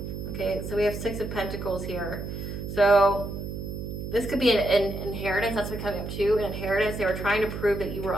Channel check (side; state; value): right; noise; hum, 6 dB below the sound